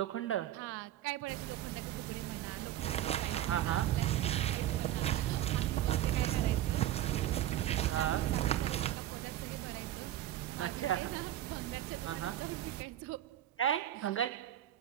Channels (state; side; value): quieter; left; 12.8 dB